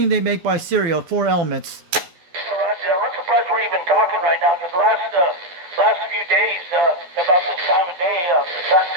they make by Serial, 4 elements. Roger, I'm surprised we're even talking right now, because last few days, about this time of day, the cotton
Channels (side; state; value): left; late; 12 ms